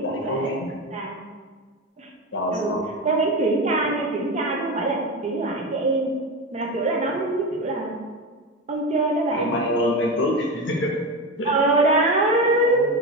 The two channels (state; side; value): normal; both; correlation 0.20